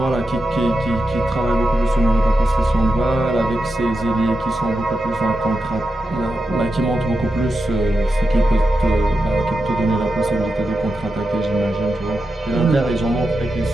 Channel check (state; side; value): normal; both; correlation 0.89